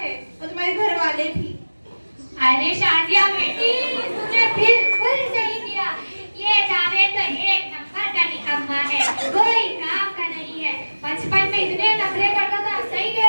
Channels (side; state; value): both; inverted; correlation -1.00